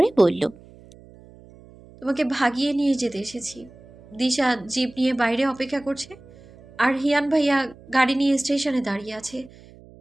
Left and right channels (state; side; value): noise; right; hum, 23 dB below the sound